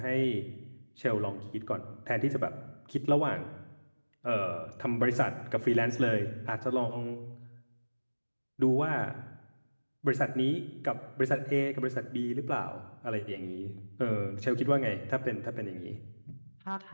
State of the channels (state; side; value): inverted; both; correlation -1.00